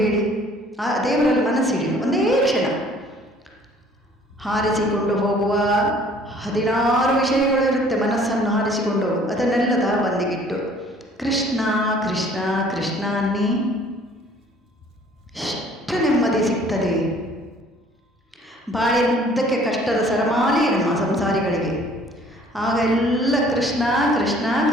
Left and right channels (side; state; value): both; normal; correlation 0.55